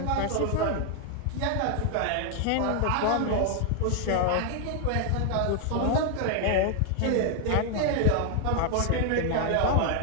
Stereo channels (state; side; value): different; both; correlation 0.00